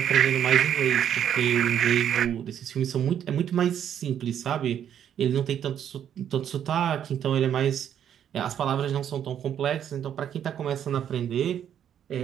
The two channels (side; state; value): left; quieter; 9.5 dB